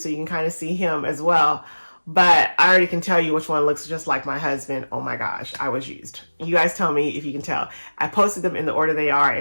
you can kind of see him as well. But I already can tell you which one looks just like my husband. Oh my gosh, I was used. You guys tell me if you can tell. I posted them in the order they are,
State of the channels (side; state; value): both; inverted; correlation -1.00